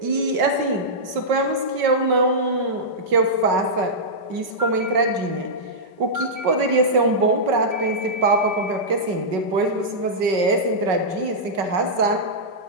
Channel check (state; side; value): late; left; 5.4 ms